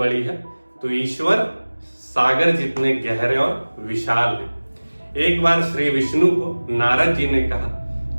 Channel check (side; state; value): both; inverted; correlation -1.00